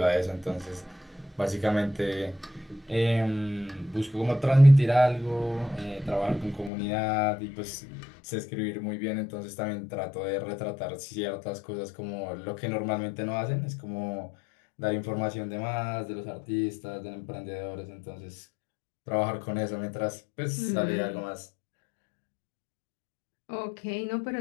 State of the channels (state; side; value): drops out; right; at 6.7 s